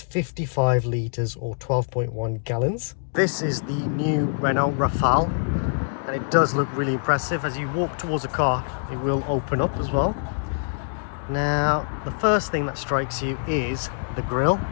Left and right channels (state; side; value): silent; right; digital silence